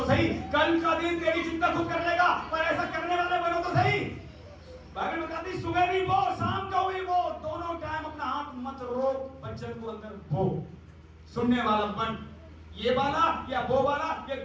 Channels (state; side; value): identical; both; correlation 1.00